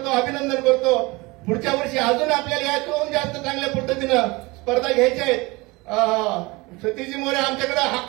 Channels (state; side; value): quieter; left; 23.9 dB